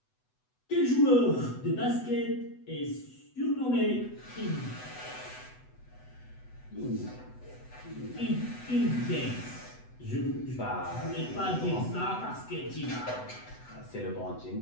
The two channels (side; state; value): right; late; 8.0 ms